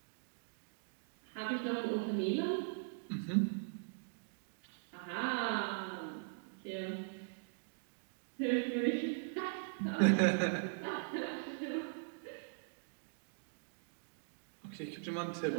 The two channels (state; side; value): silent; left; digital silence